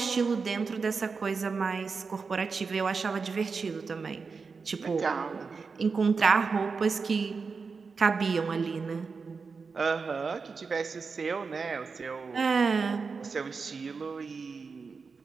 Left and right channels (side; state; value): left; quieter; 4.9 dB